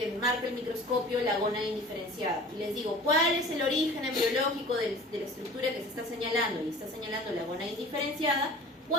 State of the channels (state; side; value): normal; both; correlation 0.43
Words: marca el microscopio la gónada indiferenciada y les digo, ¿cuál es el origen embriológico de la estructura que se está señalando? Y está señalando la gónada indiferenciada,